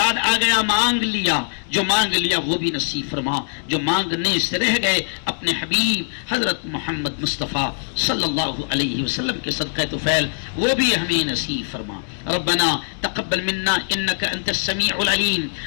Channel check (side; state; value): right; silent; digital silence